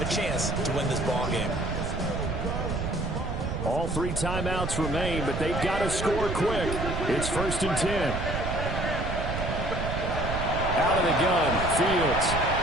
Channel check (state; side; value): noise; right; rumble, 3 dB below the sound